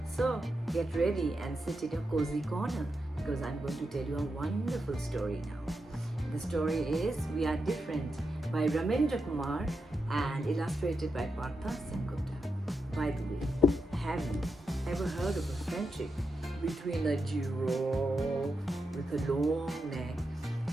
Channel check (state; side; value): normal; both; correlation 0.87